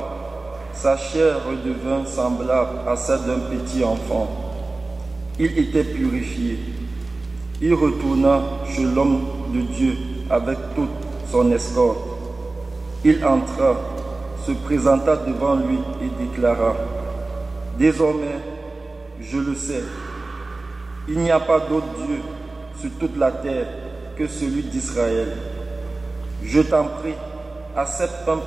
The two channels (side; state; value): left; quieter; 3.2 dB